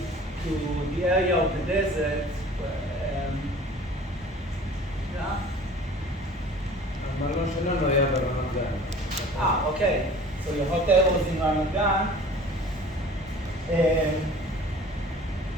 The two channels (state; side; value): normal; both; correlation 0.45